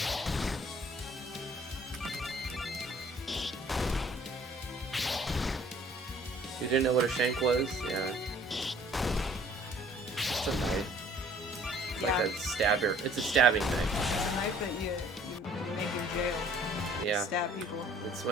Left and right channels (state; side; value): normal; both; correlation 0.56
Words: You didn't know what a shank was? Yeah. like a stabber. It's a stabbing knife. It's a knife that you make in jail. Yeah. Stab people. It's